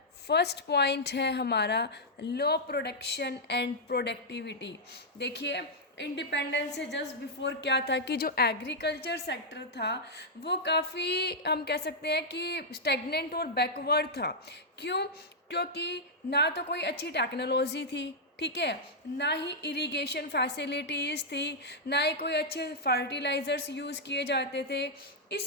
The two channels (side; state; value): both; normal; correlation -0.06